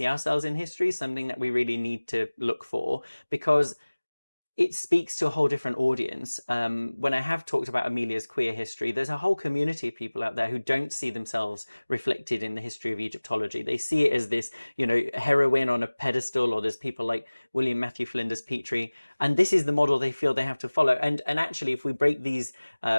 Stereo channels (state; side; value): inverted; both; correlation -1.00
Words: ourselves in history is something that we really need to look for, because it speaks to a whole different audience. When I have talked about Amelia's queer history, there's a whole community of people out there who don't see themselves reflected in the history of Egyptology. They see it as this, you know, heroine on a pedestal, or there's people like William Matthew Flinders Petrie, and this is the model they feel they have to follow. And actually, if we break these